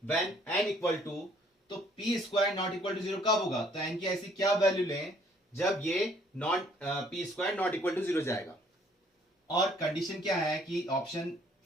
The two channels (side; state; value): both; normal; correlation 0.62